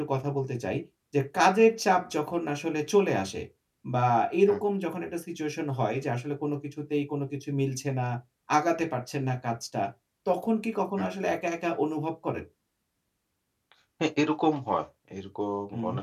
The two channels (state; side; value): identical; both; correlation 1.00